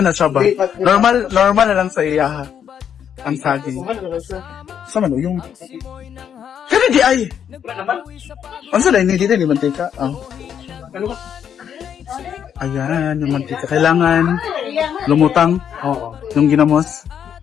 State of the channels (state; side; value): quieter; right; 8.6 dB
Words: na siya ba? Normal na lang sa iya ha. Ang saging. Sa man yung... Kaya di ay! Ang sa lain, hindi din yung mantika. Oh. Ayan, yung mantika. Kailangan lumutang. Oo. Yung ginamos